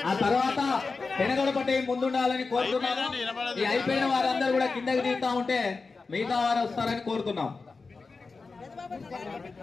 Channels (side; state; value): right; quieter; 4.2 dB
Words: ఆ తర్వాత పెనగొడపట్టి ముందుండాలని కోరుతున్నాము. ఈ అయిపోయిన వారందరూ కూడా కిందకి దిగుతా ఉంటే మిగతా వారు వస్తారని కోరుతున్నాం.